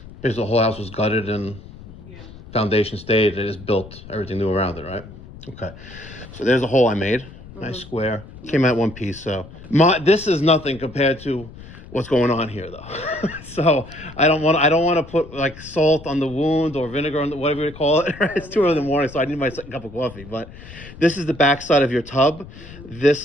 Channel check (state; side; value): noise; left; rumble, 17 dB below the sound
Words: Is the whole house was gutted and Yeah. foundation stayed, it is built everything new around it, right? Okay. So there's a hole I made. Nice square. Came out one piece. So this is nothing compared to what's going on here, though. So I don't want to put like salt on the wound or vinegar on the, whatever you call it. Right? It's 2 in the morning, so I need my second cup of coffee. But this is the back side of your tub.